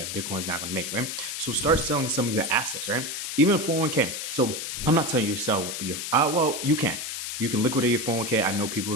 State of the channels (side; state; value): left; noise; hiss, 5 dB below the sound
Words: Bitcoin is not going to make, right? So start selling some of your assets, right? Even 401k. So I'm not telling you to sell your, well, you can. You can liquidate your 401k. I know people